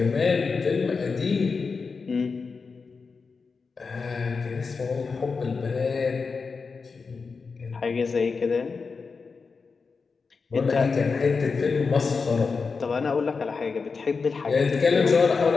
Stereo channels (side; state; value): right; quieter; 4.8 dB